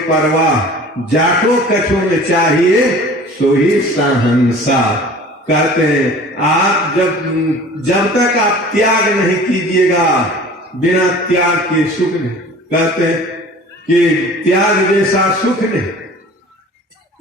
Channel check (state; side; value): normal; both; correlation 0.44